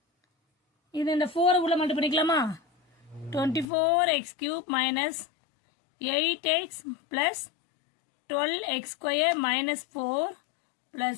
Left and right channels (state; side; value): drops out; right; at 3.7 s